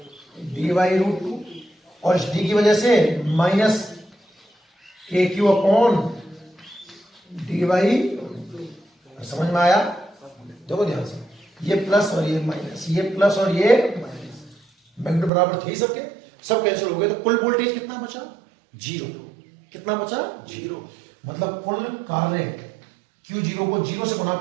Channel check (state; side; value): drops out; left; at 15.3 s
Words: d/√2, और इस d की वजह से माइनस के क्यू अपॉन d/√2, समझ में आया, देखो ध्यान से, ये प्लस और ये माइनस, ये प्लस और ये माइनस, मैग्नीट्यूड बराबर थे सबके, सब कैंसिल हो गए, तो कुल वोल्टेज कितना बचा, 0, कितना बचा 0, मतलब कुल कार्य Q0 को 0 से गुणा